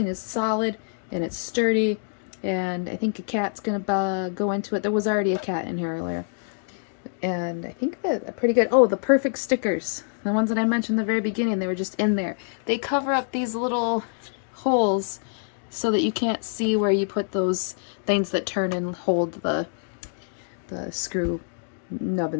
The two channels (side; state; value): right; silent; digital silence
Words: is solid and it's sturdy, and I think a cat's gonna go into it. There was already a cat in here earlier. And I think that are pretty good. Oh, the perfect stickers. The ones that I mentioned in the very beginning, they were just in there. They cover up these little holes so that you can't see where you put those things that turn and hold the screw